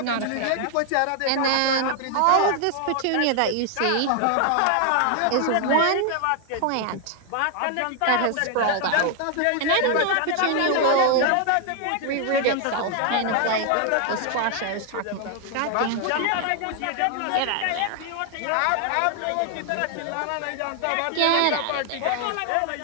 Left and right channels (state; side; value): different; both; correlation 0.00